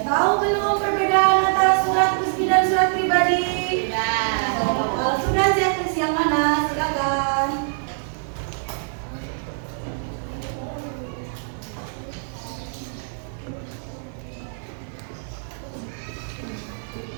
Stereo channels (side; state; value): left; silent; digital silence